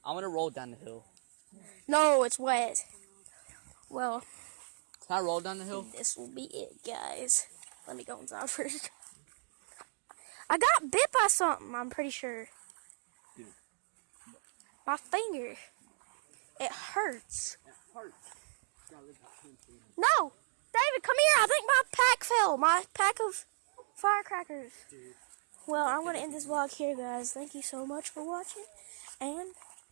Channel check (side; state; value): left; silent; digital silence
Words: I'm gonna roll down the hill. No, it's wet. Well, Can I roll down the hill? this will be it, guys. Let me go inside first. I got bit by something, I'm pretty sure. Dude. My finger. It hurts. It hurts. No! David, come here. I think my pack fell. My pack of firecrackers. Dude. Well, I'm going to end this vlog here, guys. Thank you so much for watching. And